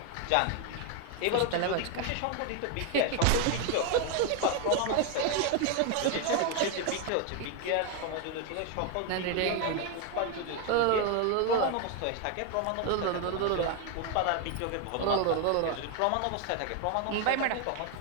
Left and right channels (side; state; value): both; different; correlation 0.01